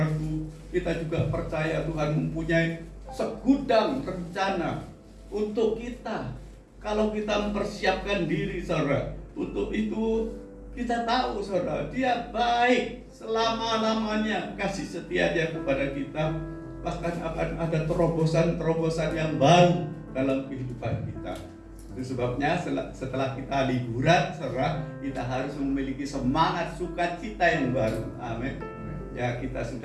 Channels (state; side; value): identical; both; correlation 1.00